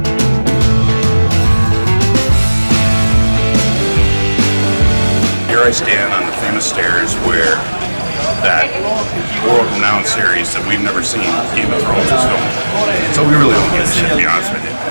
I stand on the famous stairs where that world-renowned series that we've never seen, Game of Thrones, is filmed. So we really don't give a shit, to be honest with you.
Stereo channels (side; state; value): both; inverted; correlation -1.00